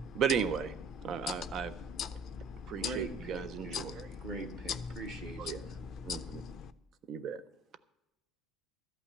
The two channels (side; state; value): left; quieter; 3.2 dB